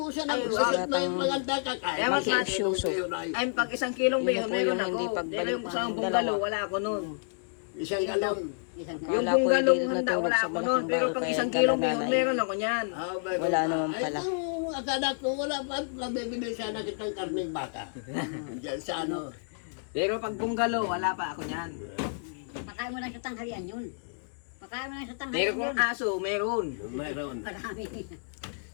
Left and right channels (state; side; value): silent; right; digital silence